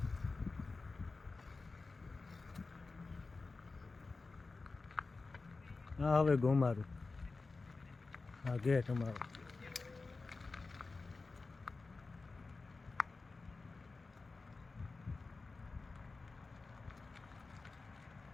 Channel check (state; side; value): quieter; right; 3.9 dB